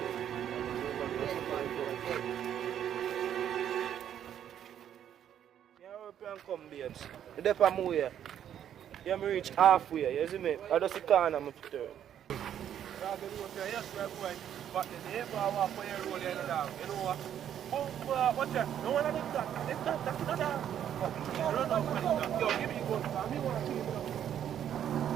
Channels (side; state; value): left; quieter; 9.9 dB